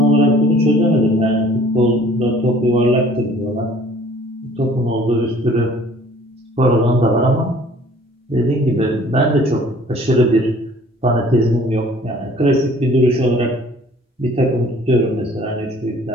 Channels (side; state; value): both; normal; correlation 0.53